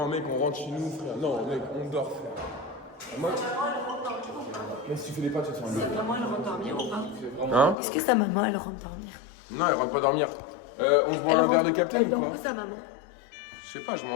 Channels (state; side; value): drops out; right; at 7.8 s